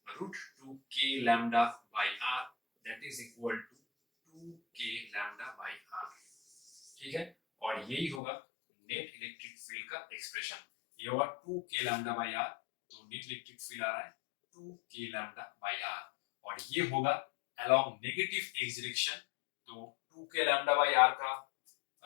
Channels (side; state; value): right; drops out; at 8.2 s